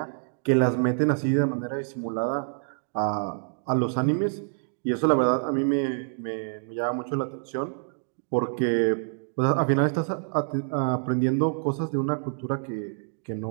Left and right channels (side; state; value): left; silent; digital silence